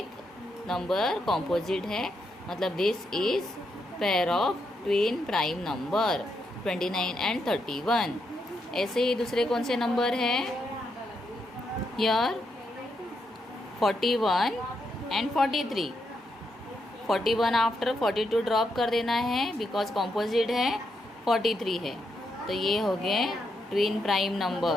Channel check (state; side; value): normal; both; correlation 0.81